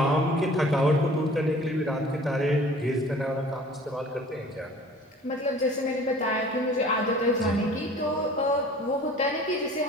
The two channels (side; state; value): both; normal; correlation 0.48